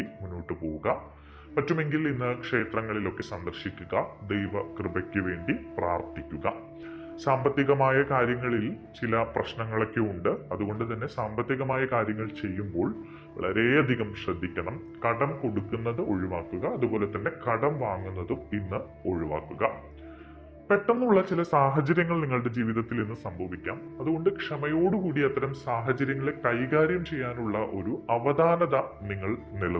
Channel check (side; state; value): both; identical; correlation 1.00